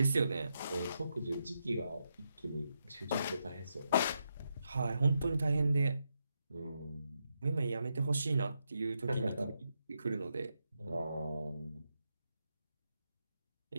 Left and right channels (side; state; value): both; inverted; correlation -0.83